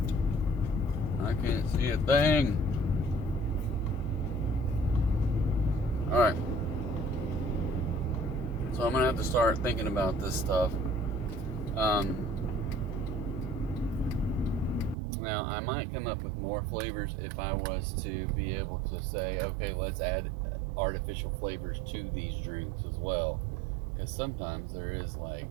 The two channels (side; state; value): left; drops out; at 15.0 s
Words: I can't see a thing. Alright. So I'm going to have to start thinking about this stuff. Now, I might come up with more flavors if I was to be able to say, okay, let's add artificial flavors to these drinks as well. Because sometimes there is like